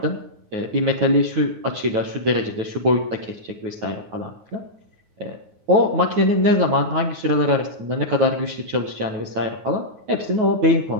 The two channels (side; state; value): left; late; 9.4 ms